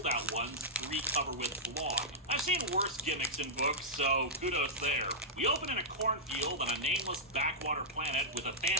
ones, 3 cover with blog. I've seen worse gimmicks in books, so kudos there. We open in a cornfield on a nameless backwater planet with a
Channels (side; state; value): both; normal; correlation -0.10